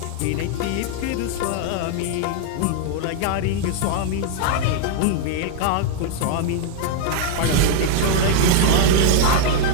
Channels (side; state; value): both; different; correlation -0.01